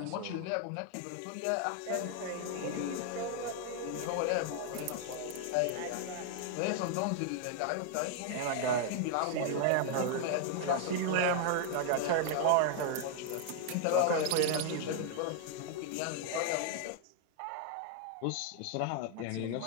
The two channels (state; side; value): different; both; correlation 0.00